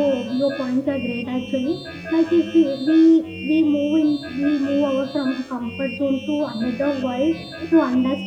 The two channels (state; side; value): identical; both; correlation 1.00